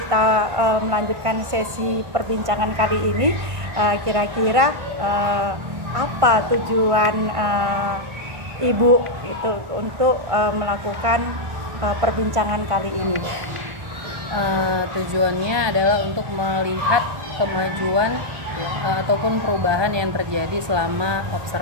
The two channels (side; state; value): left; late; 1.5 ms